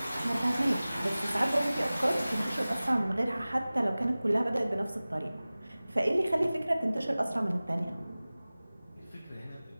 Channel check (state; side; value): inverted; both; correlation -0.98